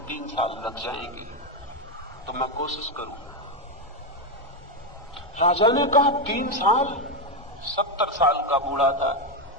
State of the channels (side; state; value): both; normal; correlation 0.07